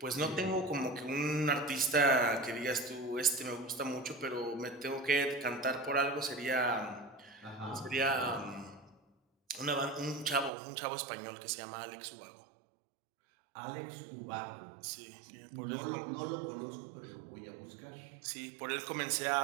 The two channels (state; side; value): drops out; left; at 10.5 s